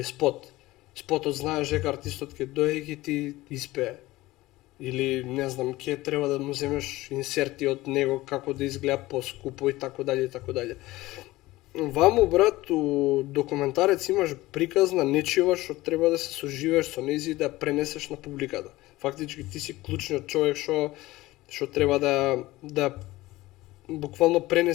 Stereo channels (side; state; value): right; quieter; 18.3 dB